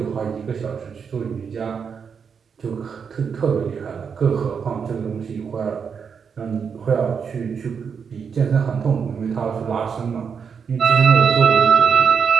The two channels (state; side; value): quieter; left; 6.5 dB